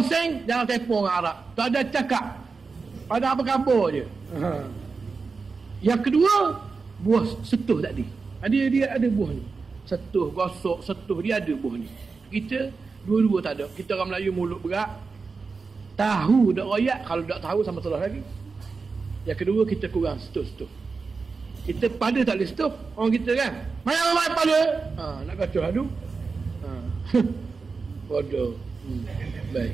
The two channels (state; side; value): quieter; left; 4.6 dB